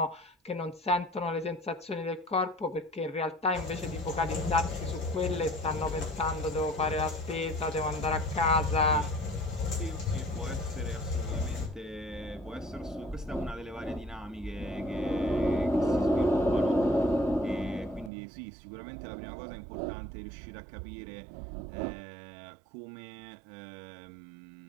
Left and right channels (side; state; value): left; drops out; at 18.1 s